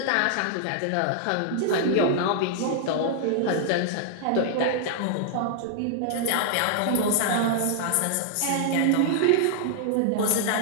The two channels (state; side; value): different; both; correlation -0.01